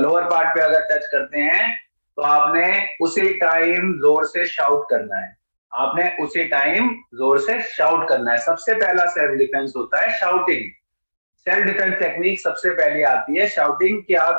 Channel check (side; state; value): both; inverted; correlation -1.00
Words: पार्ट पे अगर टच करते हैं, तो आपने उसी टाइम जोर से शाउट करना है। आपने उसी टाइम जोर से शाउट करना है। सबसे पहला सेल्फ डिफेंस होता है शाउटिंग। सेल्फ डिफेंस टेक्निक सबसे पहले आती है शाउटिंग, कि